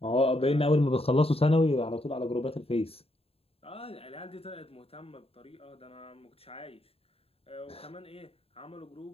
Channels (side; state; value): right; late; 0.28 ms